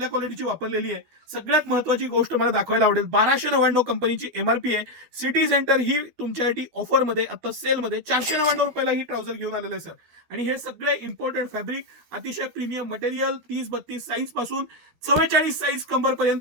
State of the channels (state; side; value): late; left; 13 ms